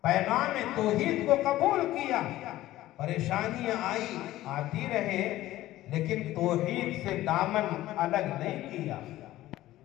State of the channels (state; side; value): quieter; right; 15.4 dB